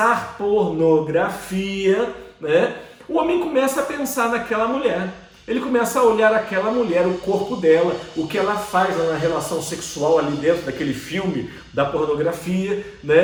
pornografia, né? O homem começa a pensar naquela mulher. Ele começa a olhar aquela mulher, o corpo dela, o que ela faz na relação sexual ali dentro daquele filme da pornografia,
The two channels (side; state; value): both; identical; correlation 1.00